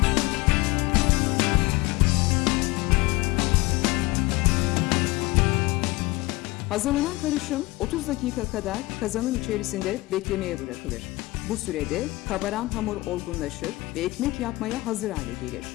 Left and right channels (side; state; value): right; quieter; 21.4 dB